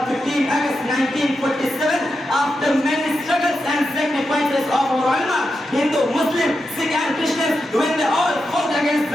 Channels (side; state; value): both; normal; correlation 0.88